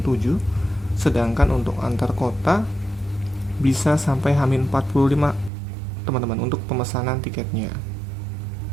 sedangkan untuk antar kota bisa sampai H-45 teman-teman untuk pemesanan tiketnya.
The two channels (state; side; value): drops out; left; at 5.5 s